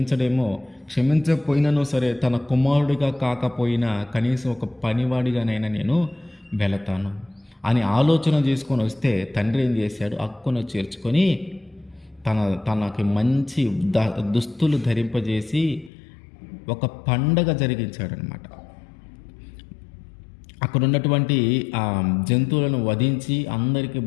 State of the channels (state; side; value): drops out; right; at 15.9 s